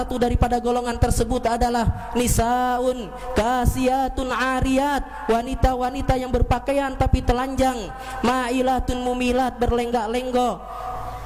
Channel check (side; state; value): both; identical; correlation 1.00